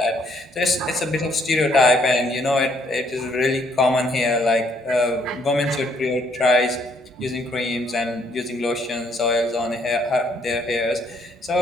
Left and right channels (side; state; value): both; normal; correlation 0.68